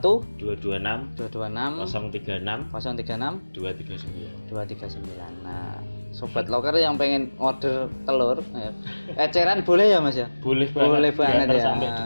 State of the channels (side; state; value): both; inverted; correlation -1.00